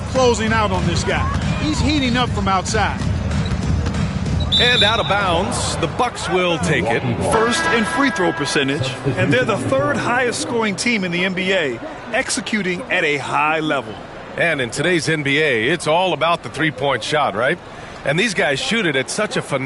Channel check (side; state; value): both; identical; correlation 1.00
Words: closing out on this guy. He's heating up from outside. And out of bounds, the Bucks will take it. First in free throw percentage, and they're the third highest scoring team in the NBA, executing at a high level. And in today's NBA, it's all about the three-point shot, right? And these guys shoot it at such a